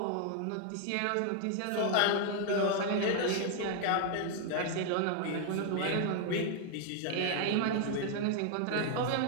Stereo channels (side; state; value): both; different; correlation 0.00